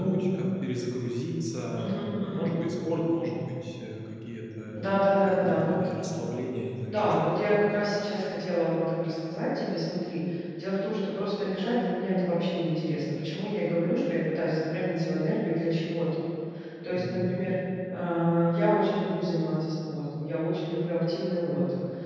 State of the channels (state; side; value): identical; both; correlation 1.00